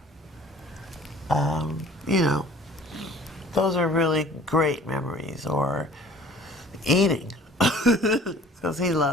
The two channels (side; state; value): both; normal; correlation 0.49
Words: You know, those are really great memories. Or eating, because he